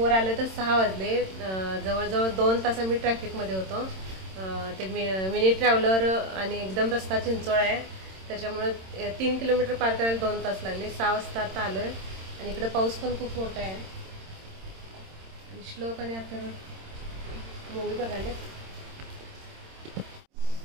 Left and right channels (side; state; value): left; late; 26 ms